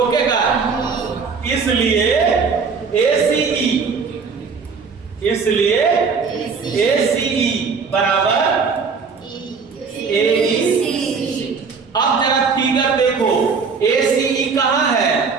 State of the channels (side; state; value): left; quieter; 5.3 dB